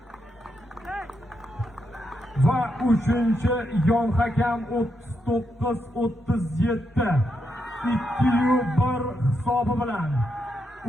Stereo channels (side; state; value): both; normal; correlation 0.82